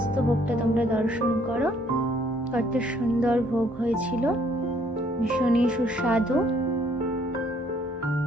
ভোগটা তোমরা দর্শন করো। কত সুন্দর ভোগ হয়েছিল, ভীষণই সুস্বাদু।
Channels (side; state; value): both; normal; correlation 0.64